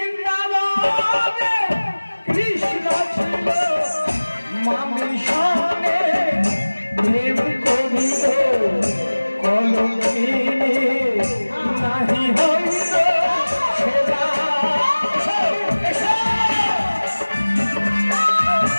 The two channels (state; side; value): inverted; both; correlation -1.00